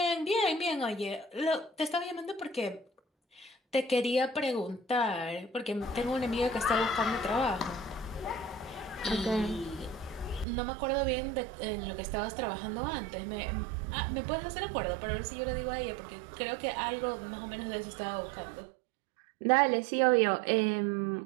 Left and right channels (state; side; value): drops out; left; at 10.5 s